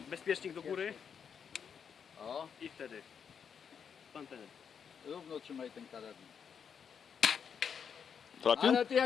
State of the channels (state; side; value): quieter; right; 7.1 dB